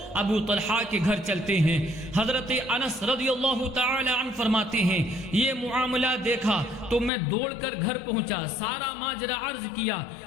ابو طلحہ کے گھر چلتے ہیں۔ حضرت انس رضی اللہ تعالی عنہ فرماتے ہیں یہ معاملہ دیکھا تو میں دوڑ کر گھر پہنچا، سارا ماجرا عرض کیا۔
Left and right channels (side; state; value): right; drops out; at 7.1 s